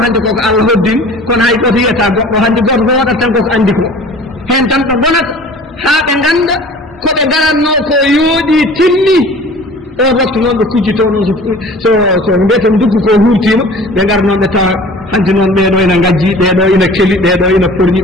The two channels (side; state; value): both; normal; correlation 0.45